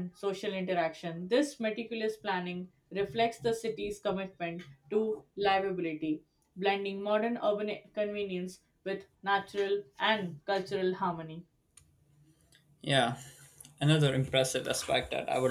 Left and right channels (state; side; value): identical; both; correlation 1.00